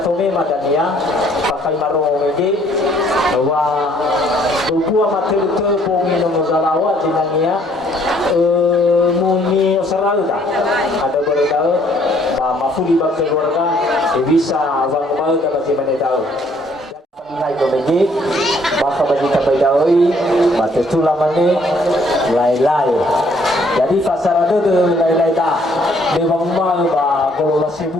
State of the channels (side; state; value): both; normal; correlation 0.64